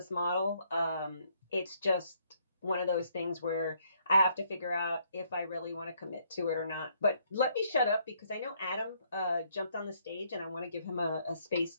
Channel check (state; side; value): inverted; both; correlation -0.69